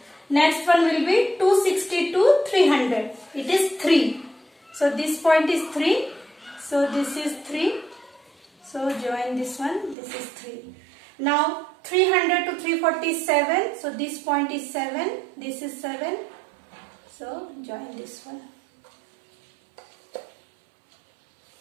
Next one will be 260 to 300. It is 3. So this point is 3. So this is 3. So join this one. This is 3. Now 300 to 347. So this point is 7. This is 7. So join this one.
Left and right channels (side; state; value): left; drops out; at 10.0 s